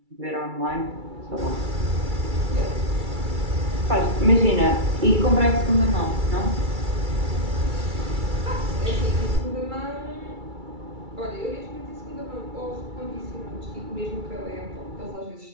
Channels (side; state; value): left; late; 2.3 ms